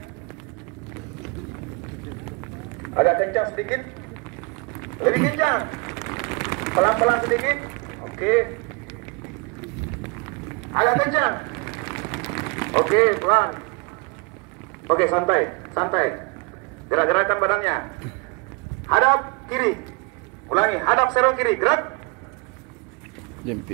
Agak kencang sedikit, lebih kencang, pelan-pelan sedikit, oke. Agak kencang, oke, pelan. Oke, santai, santai. Gerak-gerakan badannya. Hadap kiri, ulangi, hadap serong kiri, gerak.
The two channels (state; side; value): quieter; left; 31.1 dB